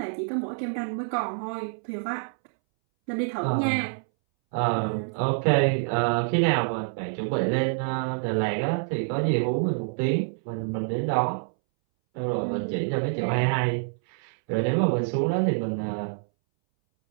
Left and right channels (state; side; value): silent; left; 60 dB below the other